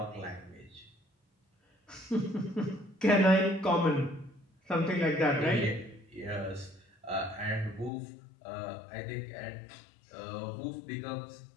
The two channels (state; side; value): drops out; right; at 7.9 s